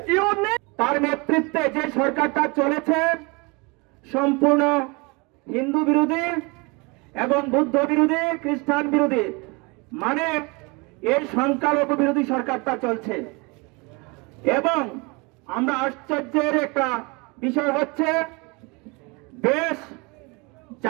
তার নেতৃত্বে যে সরকারটা চলেছে সম্পূর্ণ হিন্দু বিরোধী এবং বৌদ্ধ বিরোধী, খ্রিস্টান বিরোধী, মানে এই সংখ্যালঘু বিরোধী সরকারটা চলছে। এবং আমরা আশ্চর্যের একটা বিষয় হচ্ছে, দেশ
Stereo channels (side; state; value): left; quieter; 28.1 dB